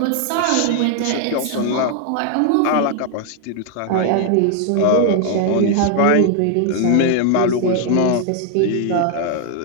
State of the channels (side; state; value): both; different; correlation 0.00